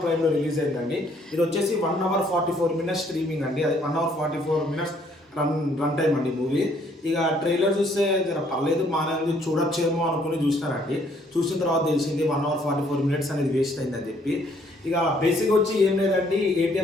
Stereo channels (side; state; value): both; normal; correlation 0.65